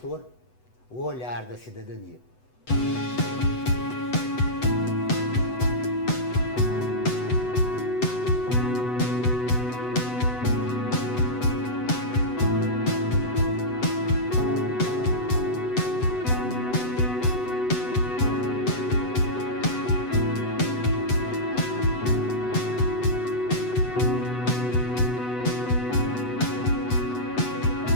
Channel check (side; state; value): right; late; 8.0 ms